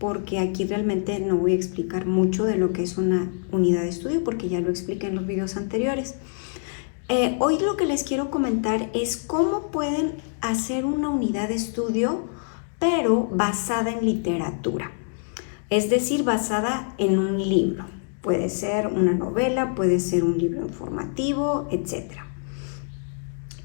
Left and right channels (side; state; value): right; silent; digital silence